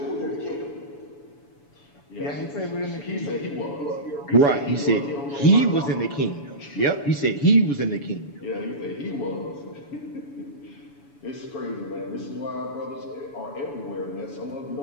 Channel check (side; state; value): right; late; 7.0 ms